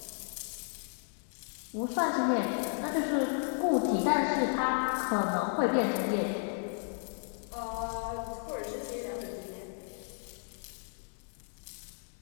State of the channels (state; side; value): silent; right; 55 dB below the other